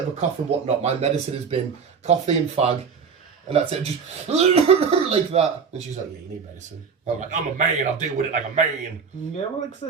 a cough and whatnot, my medicine has been coffee and fag, and that's it, just like that. And she's like, yeah, you need medicine. I'm like, I'm a man, I'll deal with it like a man. Yeah, well, like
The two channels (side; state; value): left; quieter; 6.0 dB